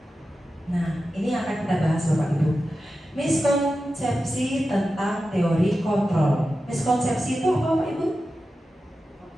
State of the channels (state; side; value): normal; both; correlation 0.92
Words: Nah, ini akan kita bahas Bapak Ibu. Miskonsepsi tentang teori kontrol. Miskonsepsi itu apa Bapak Ibu?